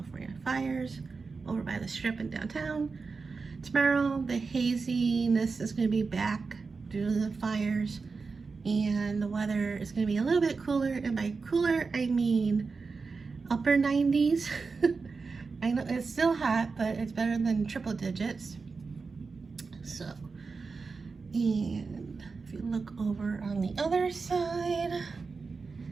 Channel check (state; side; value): quieter; left; 4.5 dB